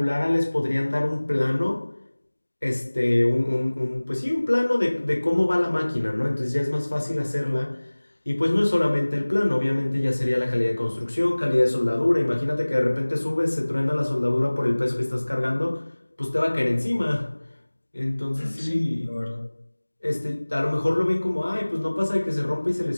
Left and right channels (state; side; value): inverted; both; correlation -1.00